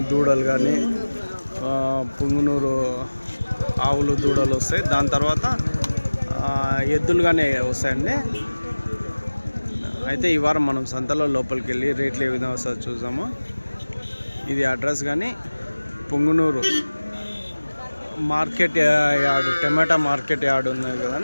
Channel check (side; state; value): both; inverted; correlation -1.00